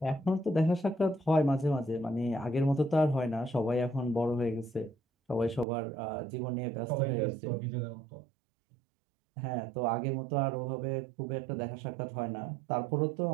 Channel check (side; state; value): left; drops out; at 5.7 s